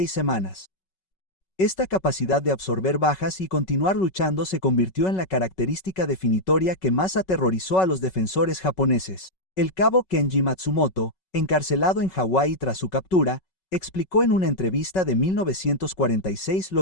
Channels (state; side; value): late; right; 5.4 ms